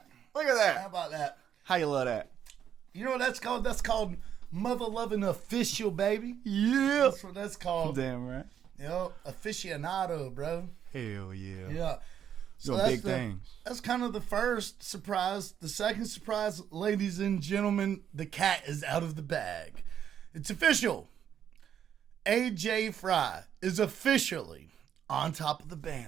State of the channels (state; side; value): quieter; left; 9.2 dB